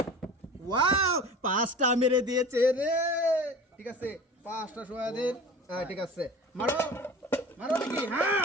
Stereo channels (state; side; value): normal; both; correlation 0.38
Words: ওয়াও, 5টা মেরে দিয়েছে রে, ঠিক আছে? 5টা সহায় দেন। ঠিক আছে, মারো মারো দেখি।